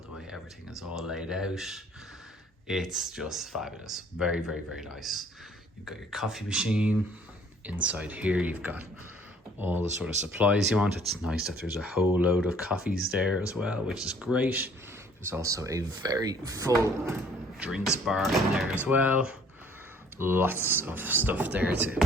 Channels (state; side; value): normal; both; correlation 0.57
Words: way everything is all laid out. It's just fabulous. Very, very, very nice. You've got your coffee machine. Inside here you've got all the sort of supplies you want. It's nice that there's a whole load of coffees there as well, which is great. There's also a very full drinks bar in there as well. Lots of stuff there